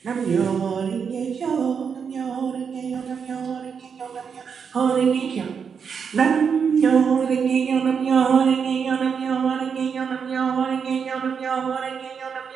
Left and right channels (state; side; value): quieter; left; 6.5 dB